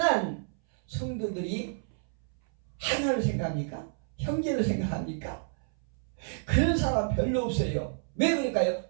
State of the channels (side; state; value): left; silent; 58 dB below the other